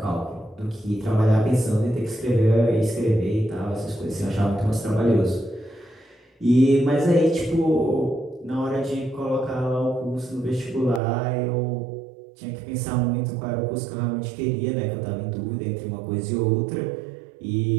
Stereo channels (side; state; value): left; drops out; at 11.0 s